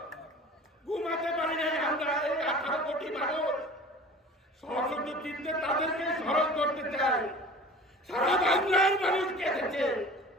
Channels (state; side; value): normal; both; correlation 0.41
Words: ঘুমাতে পারি নাই আমরা, এই 18 কোটি মানুষ। সশস্ত্র চিত্তে তাদেরকে স্মরণ করতে চাই। সারা বাংলার মানুষ কেঁদেছে,